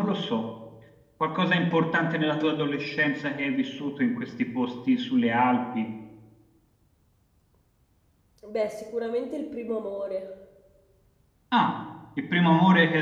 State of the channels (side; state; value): both; identical; correlation 1.00